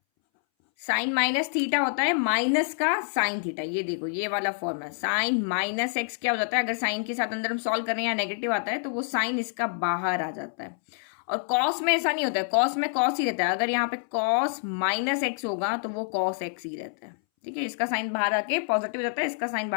साइन माइनस थीटा होता है माइनस का साइन थीटा। ये देखो, ये वाला फॉर्मूला, साइन माइनस एक्स क्या हो जाता है, अगर साइन के साथ अंदर हम सॉल्व कर रहे हैं या नेगेटिव आता है तो वो साइन इसका बाहर आ जाता है। और कॉस में ऐसा नहीं होता है, कॉस में कॉस ही रहता है। अगर यहाँ पे कॉस माइनस एक्स होगा तो वो कॉस एक्स ही रहता है, ठीक है, इसका साइन बाहर आके पॉजिटिव रहता है, इसका साइन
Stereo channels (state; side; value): silent; right; 60 dB below the other